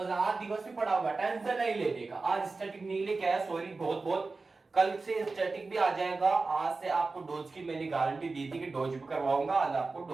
आज दिवस भी पढ़ा होगा, टेंशन नहीं लेने का। आज स्टैटिक नहीं लेके आया, सॉरी बहुत बहुत, कल से स्टैटिक भी आ जाएगा। आज से आपको डोज की मैंने गारंटी दी थी कि डोज भी करवाऊंगा, आज आपको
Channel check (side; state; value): left; quieter; 3.8 dB